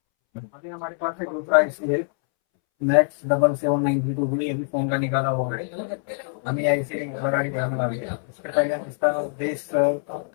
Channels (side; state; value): right; silent; 62 dB below the other